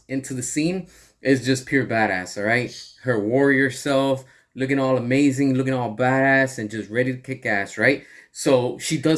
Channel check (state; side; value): identical; both; correlation 1.00